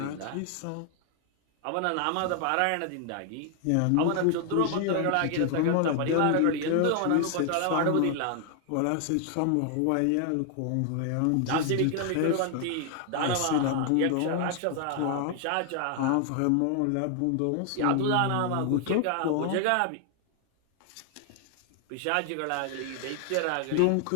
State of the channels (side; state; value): both; different; correlation 0.00